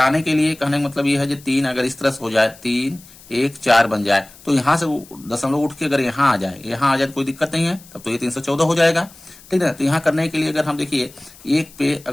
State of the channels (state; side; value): noise; left; hiss, 22 dB below the sound